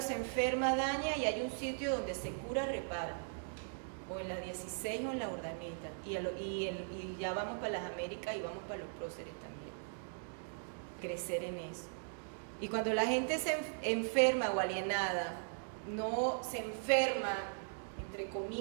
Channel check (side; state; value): left; silent; digital silence